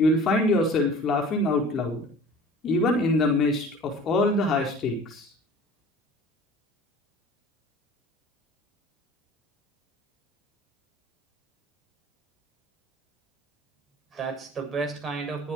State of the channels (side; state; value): both; normal; correlation 0.44